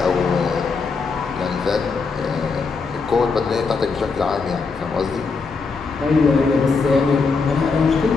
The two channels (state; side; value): quieter; right; 4.6 dB